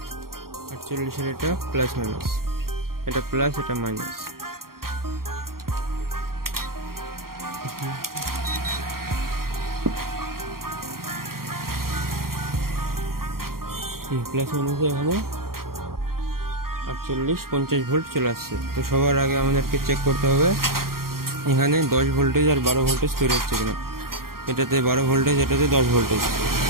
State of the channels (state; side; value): late; left; 0.93 ms